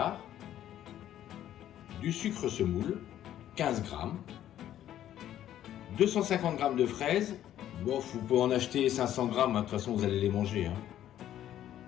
du sucre semoule, 15 g, 250 g de fraises, bon, vous pouvez en acheter 500 g, de toute façon vous allez les manger, hein.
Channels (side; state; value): right; quieter; 11.7 dB